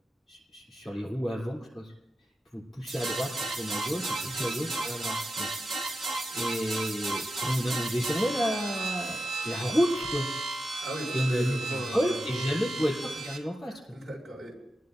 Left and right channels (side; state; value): both; normal; correlation 0.90